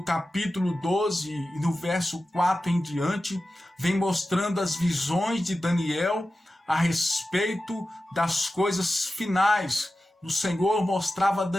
capítulo 12, no verso 4 em diante, vem mostrando as visões de Daniel a respeito das coisas finais. O Senhor mostrava a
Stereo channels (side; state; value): both; normal; correlation 0.93